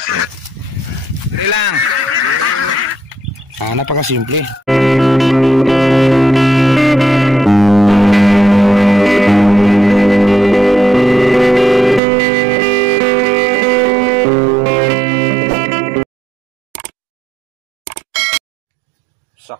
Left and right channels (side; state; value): left; drops out; at 12.0 s